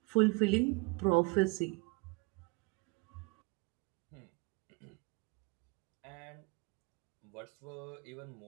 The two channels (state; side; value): quieter; left; 26.6 dB